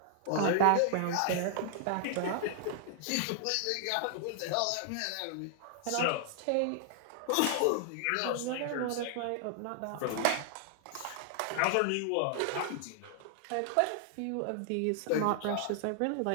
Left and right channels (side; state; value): both; different; correlation 0.00